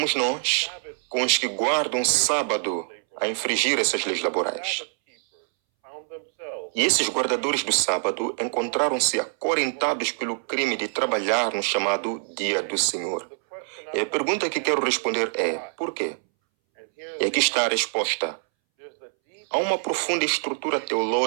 nós, com os que guardam sábado, a infringir essas leis laborais. E esses guardadores do sábado encontraram-se acorrentados pelo crime de trabalhar no chamado Dia do Senhor. E a pergunta que quero responder é: por quê? E aqui está a resposta. Há uma profunda estrutura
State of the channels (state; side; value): silent; left; 62 dB below the other